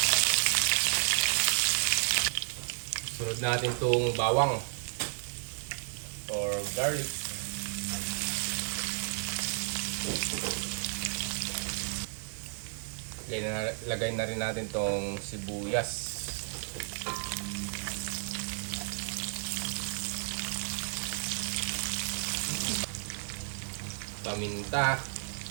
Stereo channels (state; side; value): silent; left; 56 dB below the other